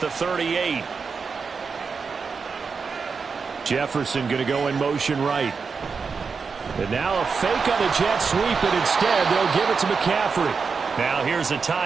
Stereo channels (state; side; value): quieter; left; 5.3 dB